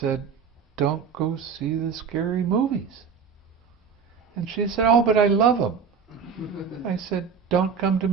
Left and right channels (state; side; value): quieter; left; 6.2 dB